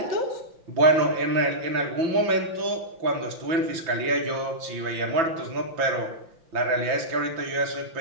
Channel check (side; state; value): left; late; 6.0 ms